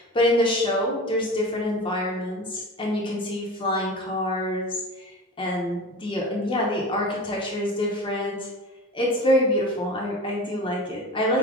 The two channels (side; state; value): both; normal; correlation 0.33